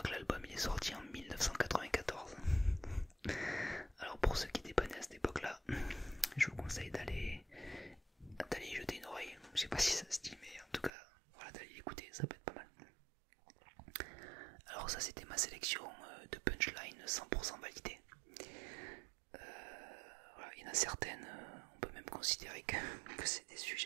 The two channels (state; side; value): drops out; left; at 10.9 s